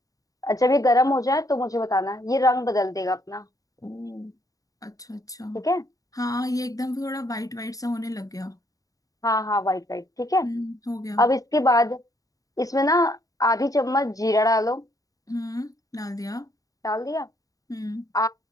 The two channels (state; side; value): late; right; 0.17 ms